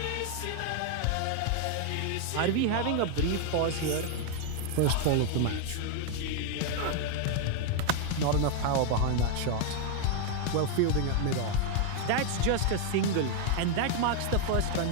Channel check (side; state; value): both; different; correlation 0.00